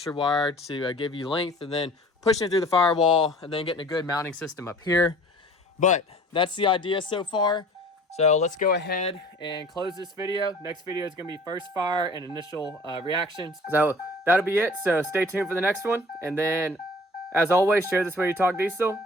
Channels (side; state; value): both; normal; correlation 0.47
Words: wire to give you length, and then pushing it through the firewall, and then getting a good mounting system up here. But that's the idea so far. So let's go ahead and close this video. Next video is going to be first fire and initial reactions. So that'll be it. So stay tuned for the next one. And then, as always, share this video, talk diesel,